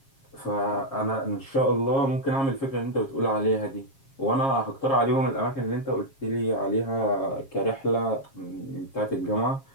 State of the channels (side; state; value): right; late; 7.4 ms